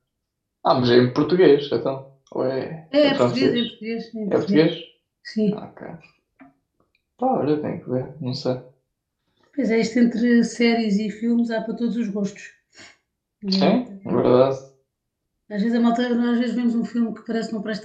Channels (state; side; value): identical; both; correlation 1.00